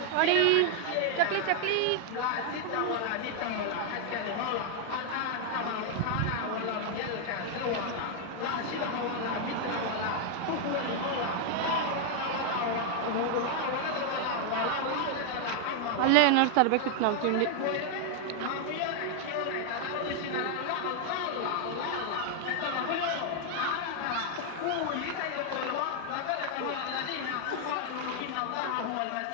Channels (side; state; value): both; different; correlation 0.00